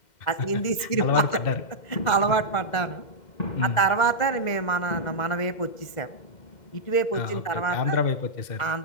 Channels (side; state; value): right; late; 2.1 ms